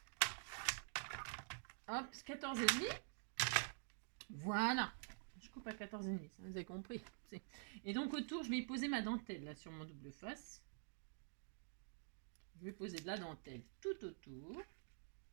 là. Hop, 14 et demi. Voilà. Je coupe à 14 et demi, ça vous avez compris. Et donc autour, je vais y poser ma dentelle là sur mon double face. Je vais poser de la dentelle tout autour.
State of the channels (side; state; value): left; silent; digital silence